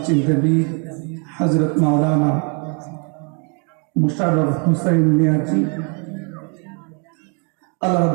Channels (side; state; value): left; quieter; 37.1 dB